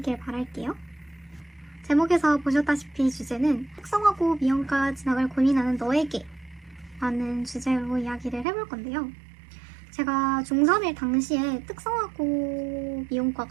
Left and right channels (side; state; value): left; drops out; at 8.5 s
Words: 바랄게요. 제목에서 보셨다시피 주제는 특성화고 미용과 진학을 고민하는 너에게 라는 주제로 이야기를 해볼 건데요. 제가 중3일 당시에 특성화고